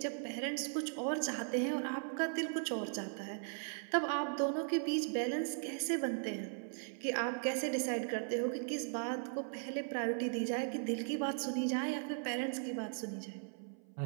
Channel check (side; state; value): left; silent; 52 dB below the other